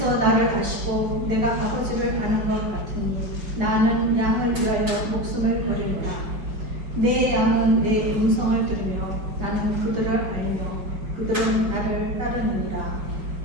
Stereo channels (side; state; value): left; late; 5.1 ms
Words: 나를 아시고 내가 아버지를 아는 것 같으니 나는 양을 위하여 목숨을 버리리라. 내 양은 내 음성을 들으며 나는 그들을 알며 그들은 나를 따르느니라.